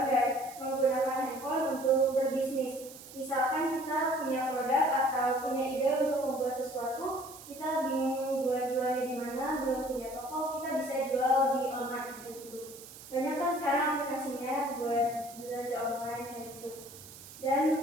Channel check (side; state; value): right; noise; hiss, 16 dB below the sound